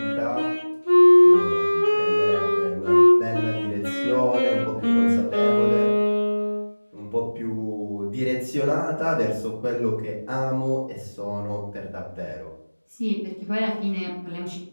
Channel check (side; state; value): both; inverted; correlation -1.00